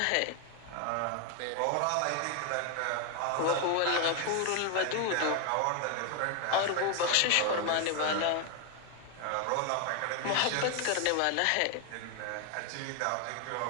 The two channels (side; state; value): both; different; correlation 0.01